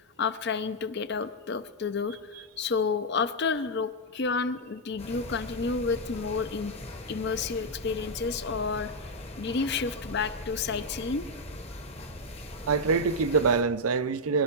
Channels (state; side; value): normal; both; correlation -0.02